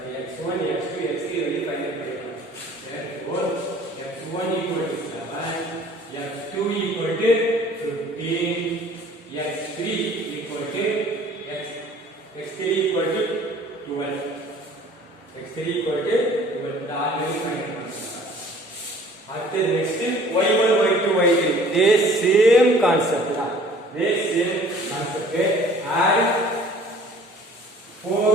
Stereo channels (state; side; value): normal; both; correlation 0.52